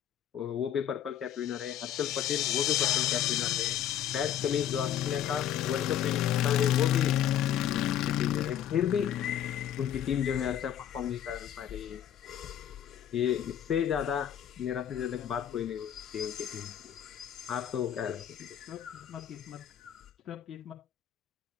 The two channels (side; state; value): right; quieter; 10.3 dB